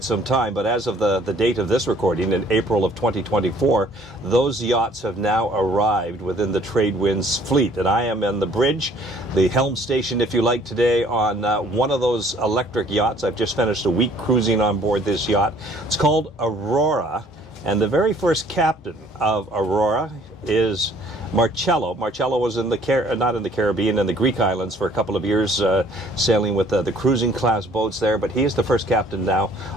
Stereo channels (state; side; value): normal; both; correlation 0.58